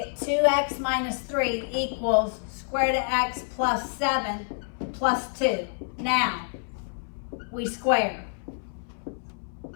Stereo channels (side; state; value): right; silent; 60 dB below the other